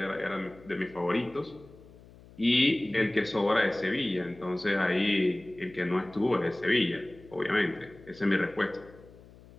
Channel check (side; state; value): left; noise; hum, 22 dB below the sound